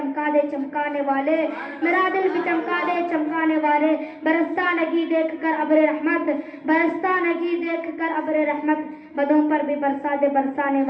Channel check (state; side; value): identical; both; correlation 1.00